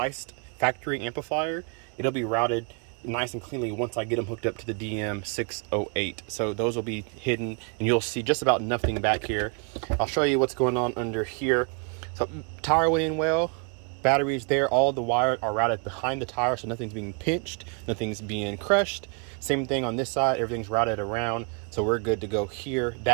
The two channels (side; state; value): left; quieter; 36.4 dB